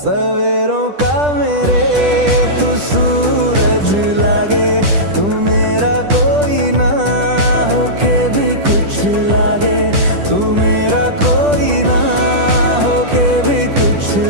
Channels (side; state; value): left; late; 10 ms